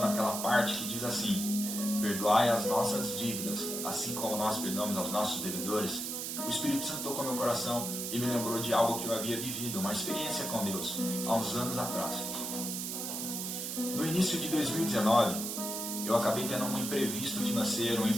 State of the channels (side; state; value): right; noise; hiss, 4 dB below the sound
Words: parte que diz assim: perdoai as nossas dívidas, assim como nós perdoamos aos nossos devedores. O Espírito Santo tocou meu coração e me lembrou de algo que eu havia vivido, uma experiência com Deus, há uns anos atrás. No início de 2019, eu acabei tendo um imprevisto financeiro, um